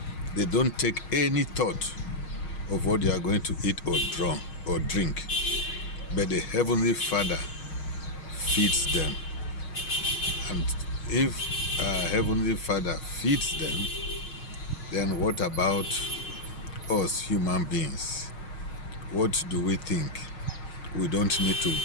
They don't take any thought of what they are going to eat or drink, but the Heavenly Father feeds them. And if Heavenly Father feeds them, then what about us human beings? What do we think? We don't need to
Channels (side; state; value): right; late; 6.4 ms